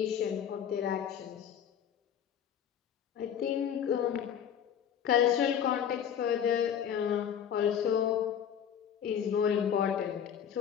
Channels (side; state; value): right; quieter; 8.8 dB